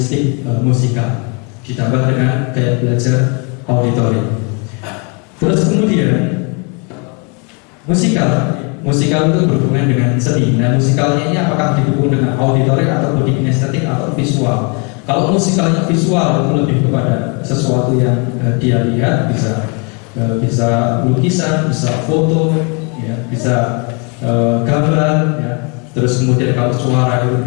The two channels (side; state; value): right; quieter; 34.2 dB